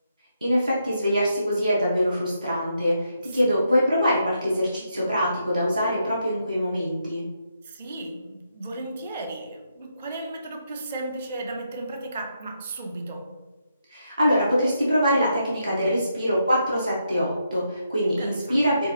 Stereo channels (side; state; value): both; inverted; correlation -0.80